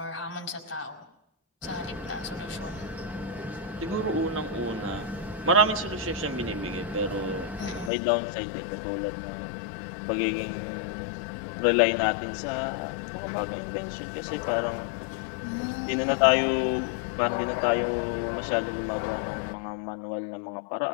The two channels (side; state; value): right; drops out; at 7.9 s